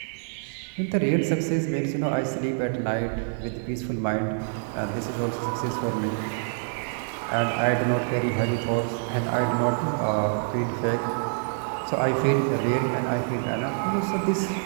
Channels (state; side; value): silent; left; digital silence